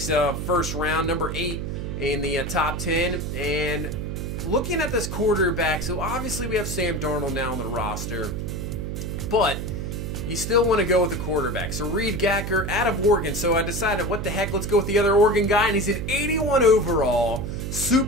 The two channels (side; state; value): right; noise; hum, 4 dB below the sound